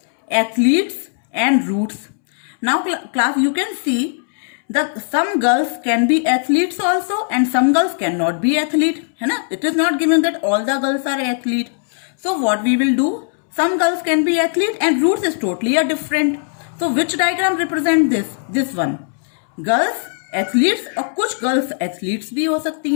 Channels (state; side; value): silent; right; 67 dB below the other